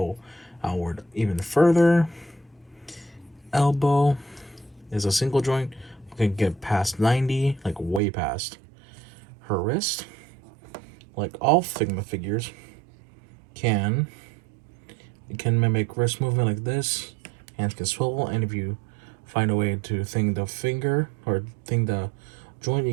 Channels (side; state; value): left; drops out; at 8.0 s